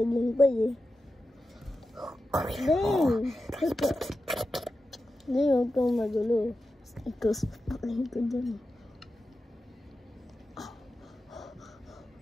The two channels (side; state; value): both; normal; correlation 0.91